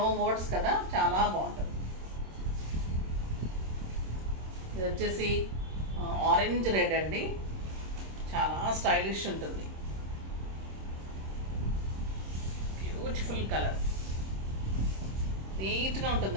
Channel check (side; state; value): left; late; 26 ms